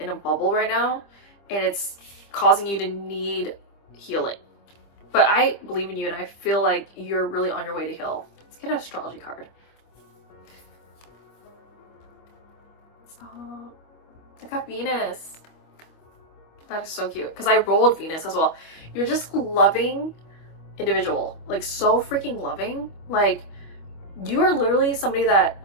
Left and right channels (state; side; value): late; right; 25 ms